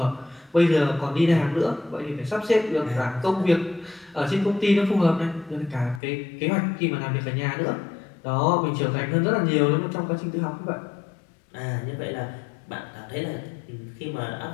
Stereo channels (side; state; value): right; drops out; at 6.0 s